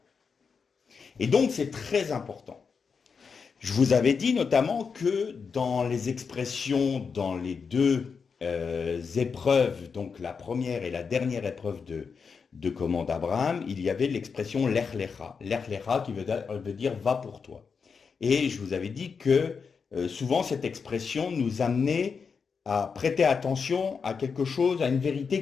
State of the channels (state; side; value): quieter; right; 5.6 dB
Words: Et donc c'est très important. Je vous avais dit notamment que dans les expressions, dans les deux épreuves, donc la première et la dernière épreuve de comment d'Abraham, il y avait l'expression l'ech lecha. L'ech lecha qui veut dire va pour toi. Et je vous avais dit que souvent cette expression nous amenait à prêter attention à quelque chose, à une